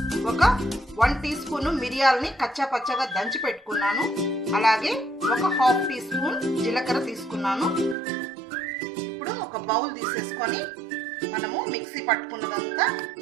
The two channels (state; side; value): drops out; left; at 8.0 s